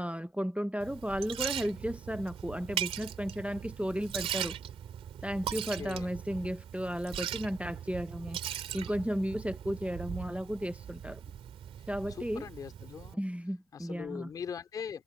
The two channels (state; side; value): normal; both; correlation 0.83